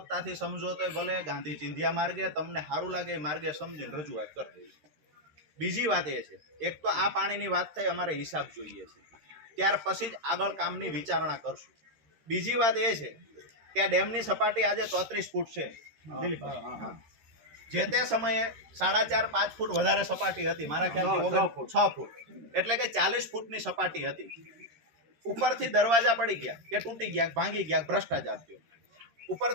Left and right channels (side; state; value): left; late; 13 ms